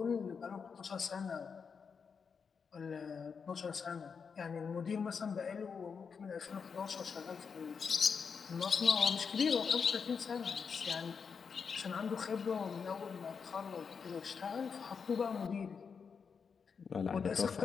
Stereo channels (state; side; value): quieter; right; 5.9 dB